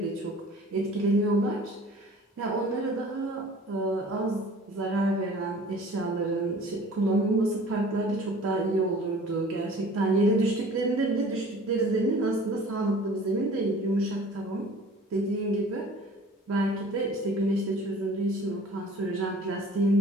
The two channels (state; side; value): normal; both; correlation 0.47